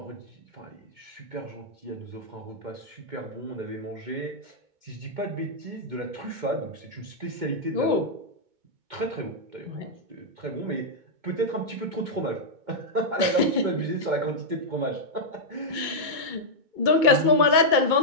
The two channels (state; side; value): late; left; 2.2 ms